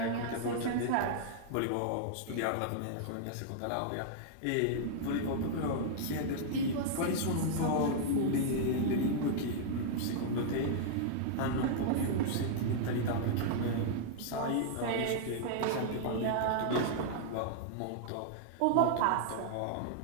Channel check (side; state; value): both; different; correlation -0.01